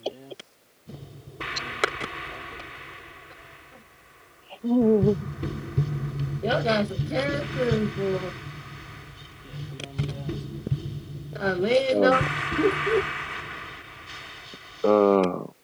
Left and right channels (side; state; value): both; identical; correlation 1.00